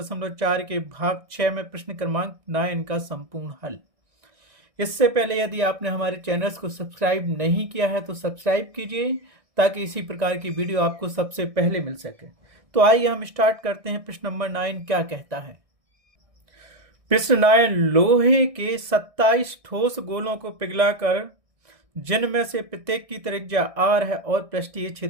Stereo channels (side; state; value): left; late; 1.6 ms